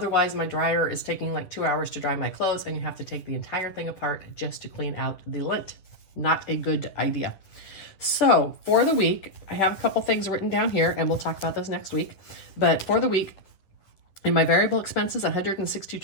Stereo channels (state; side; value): late; right; 10 ms